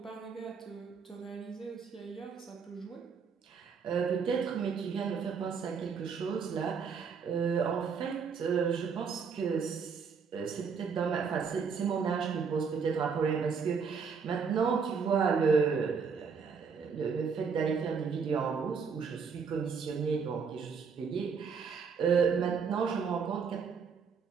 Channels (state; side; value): quieter; left; 5.9 dB